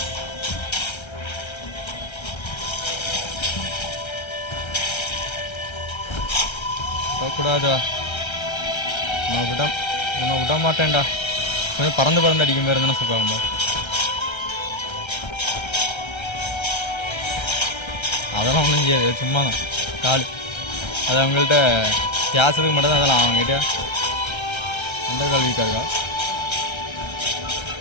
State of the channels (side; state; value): right; late; 1.3 ms